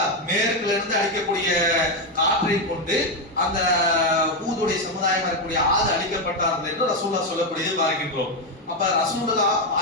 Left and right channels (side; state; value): both; normal; correlation 0.07